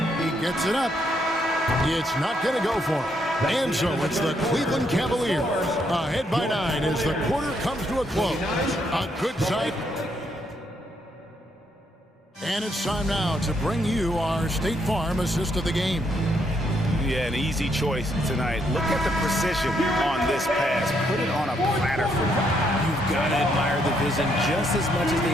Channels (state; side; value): normal; both; correlation 0.74